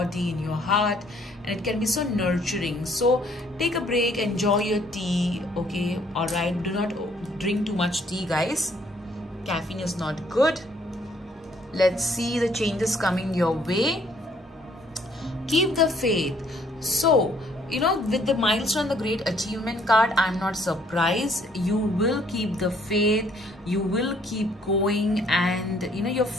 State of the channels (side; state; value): both; normal; correlation 0.64